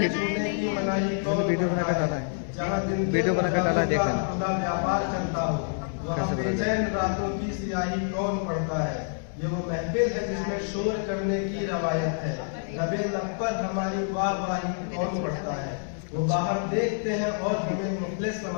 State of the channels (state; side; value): silent; right; digital silence